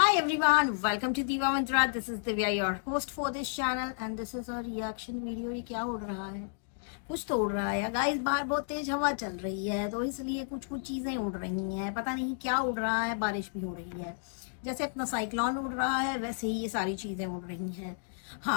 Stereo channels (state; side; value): silent; right; digital silence